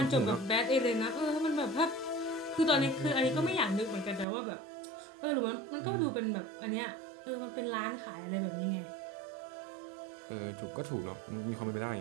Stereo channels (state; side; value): drops out; left; at 4.2 s